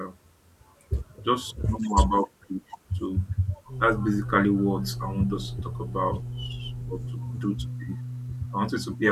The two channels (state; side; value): identical; both; correlation 1.00